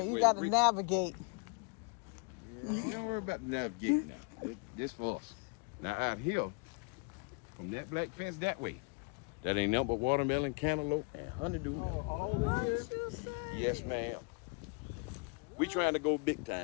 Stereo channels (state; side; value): quieter; right; 32.1 dB